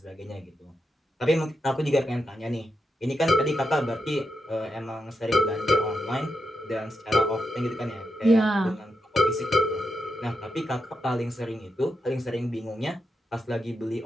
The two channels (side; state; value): both; normal; correlation 0.86